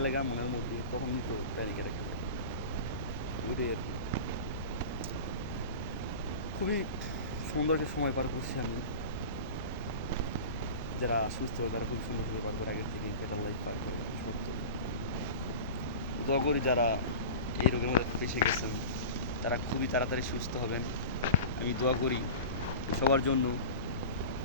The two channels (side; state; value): both; inverted; correlation -0.33